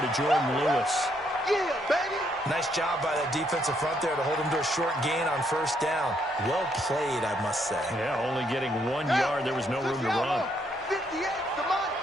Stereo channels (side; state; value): both; normal; correlation 0.73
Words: to Jordan Lewis. Yeah, baby. Nice job by that defensive front there to hold him to a short gain on first down. Well played, I must say. Yeah, only getting 1 yard. There was no room to run. 58, the money.